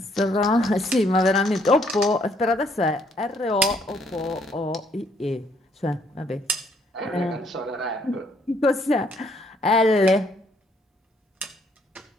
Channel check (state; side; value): normal; both; correlation 0.68